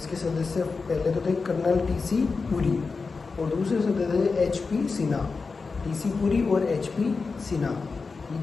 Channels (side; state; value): right; quieter; 4.5 dB